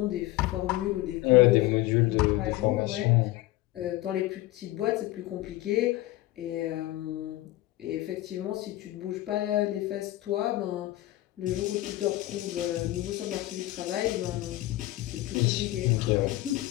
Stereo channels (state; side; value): quieter; right; 17.0 dB